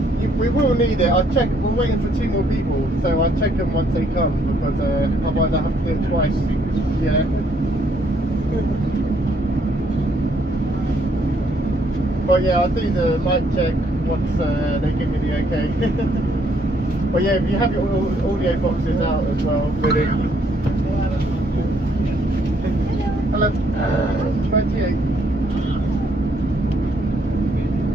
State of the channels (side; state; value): both; normal; correlation 0.69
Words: We will need it. I'll check. We're waiting for 2 more people, so I'll check them once they come because otherwise I have to do it twice. Yeah. But yeah, I'll do the mic check once they give me the okay. But yeah, if you have your audio boxes out as well, really. Hello. 28.